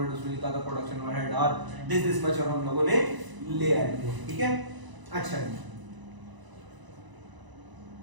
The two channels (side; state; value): left; late; 1.0 ms